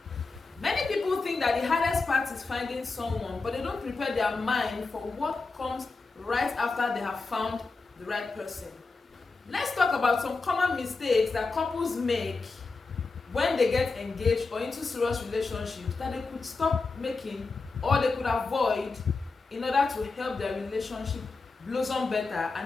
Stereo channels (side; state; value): right; quieter; 4.0 dB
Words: Many people think that the hardest part is finding someone, but they don't prepare their mind for what comes right after they have found the right person. Let's talk about some common mistakes that couples make when they get engaged or into serious relationships that they could stop making or they could avoid in order to help their relationship blossom better